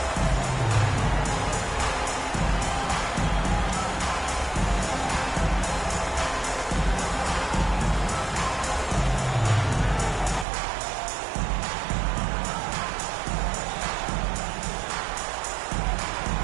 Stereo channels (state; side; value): drops out; left; at 10.5 s